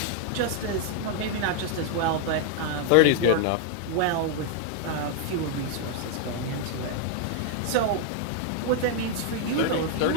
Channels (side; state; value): both; different; correlation 0.00